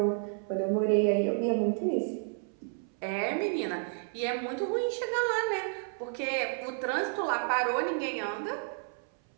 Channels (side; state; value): left; silent; 57 dB below the other